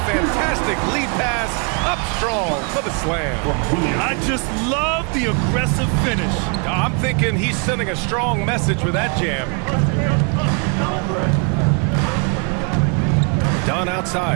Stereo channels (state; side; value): quieter; left; 36.6 dB